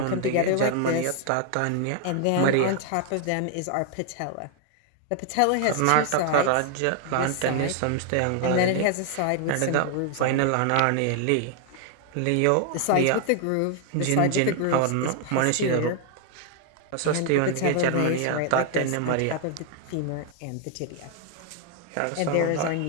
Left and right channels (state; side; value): different; both; correlation 0.00